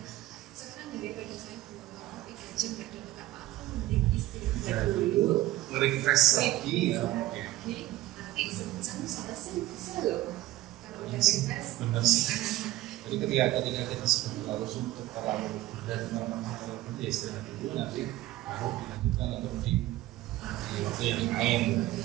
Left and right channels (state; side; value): quieter; left; 16.4 dB